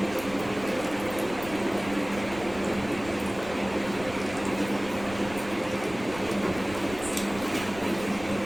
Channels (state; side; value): noise; right; rumble, 15 dB below the sound